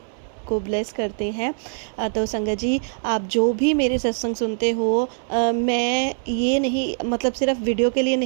को ब्लेस करते हैं। तो संगत जी आप जो भी मेरे सत्संग सुनते हो, मैं ये नहीं मतलब सिर्फ वीडियो के लिए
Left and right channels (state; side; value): silent; left; digital silence